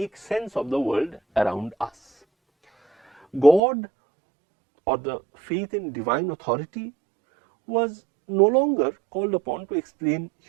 sense of the world around us. God, or the faith in divine authority, was no longer called upon to explain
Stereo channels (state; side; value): drops out; left; at 3.6 s